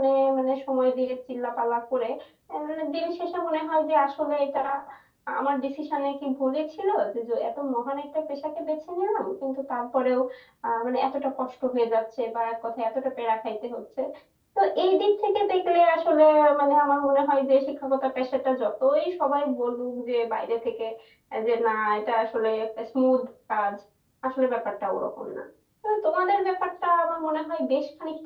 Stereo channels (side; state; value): both; identical; correlation 1.00